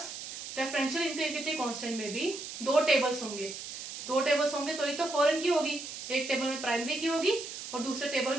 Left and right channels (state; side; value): noise; right; hiss, 9 dB below the sound